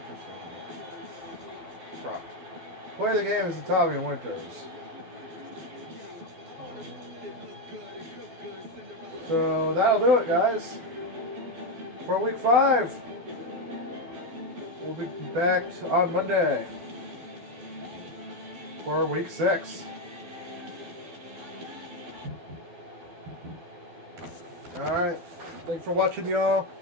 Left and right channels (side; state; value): left; late; 12 ms